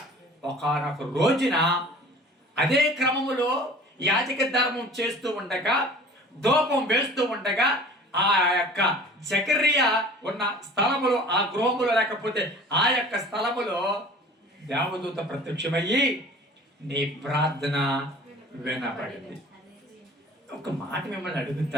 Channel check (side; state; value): both; normal; correlation 0.45